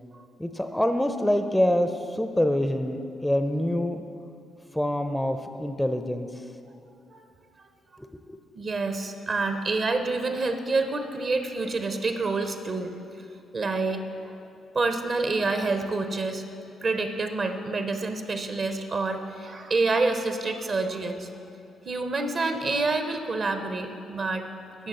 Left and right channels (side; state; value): both; normal; correlation 0.89